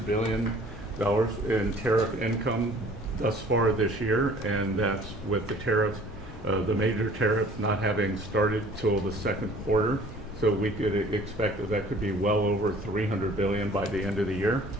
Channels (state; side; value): normal; both; correlation 0.52